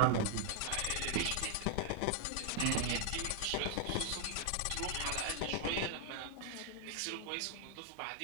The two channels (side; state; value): both; different; correlation 0.00